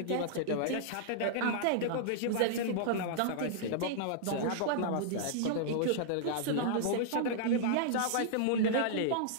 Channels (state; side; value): different; both; correlation -0.01